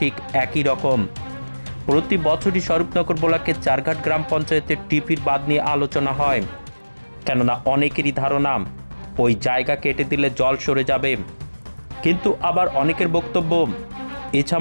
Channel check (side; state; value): both; inverted; correlation -1.00